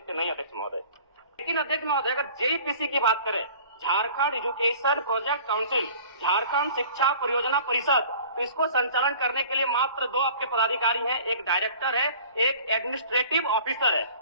नहीं, अध्यक्ष महोदय। लेकिन अध्यक्ष महोदय, अगर जेईपीसी की बात करें, Jharkhand education project council, Jharkhand शिक्षा परियोजना परिषद, तो इसको संचालन करने के लिए मात्र 2 आपके पदाधिकारी हैं, एक डायरेक्टर है, एक एडमिनिस्ट्रेटिव ऑफिसर है,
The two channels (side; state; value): both; inverted; correlation -0.46